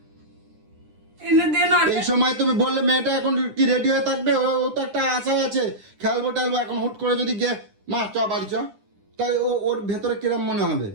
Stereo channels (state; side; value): late; left; 9.9 ms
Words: এনে দে না। এই সময় তুমি বললে মেয়েটা এখন কি রেডি হয়ে থাকবে? ও তো একটা আশা আছে, খেলবো টেলবো। এখন হুট করে যদি গিয়ে মা চ বাড়ি চ, তাই ওর ভেতরে কিরম মনে হবে?